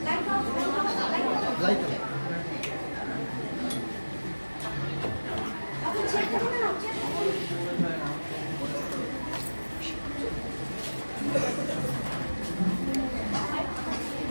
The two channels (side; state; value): both; inverted; correlation -1.00